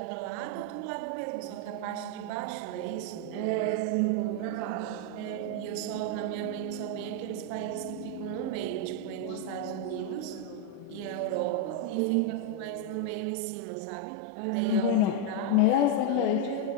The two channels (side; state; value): both; different; correlation 0.01